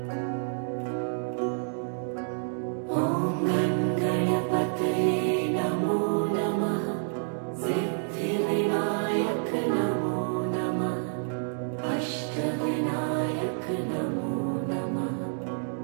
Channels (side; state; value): left; silent; digital silence